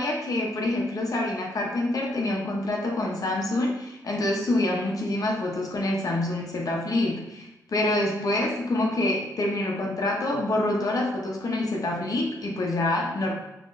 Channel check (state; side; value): normal; both; correlation 0.70